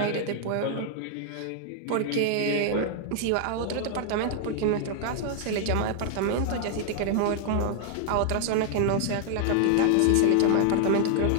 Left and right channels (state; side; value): different; both; correlation 0.00